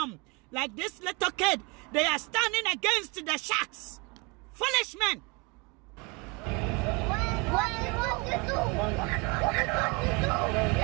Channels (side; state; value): left; quieter; 29.2 dB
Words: Like this little kid, they are standing against the sharks. Foolish men.